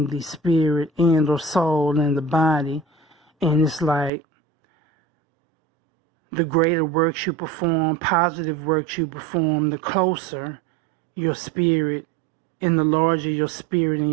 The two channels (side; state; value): left; drops out; at 4.1 s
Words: the spirit and or soul and the body. And it's like the greater works you perform, positive works you perform, the closer your spirit And the larger your spirit and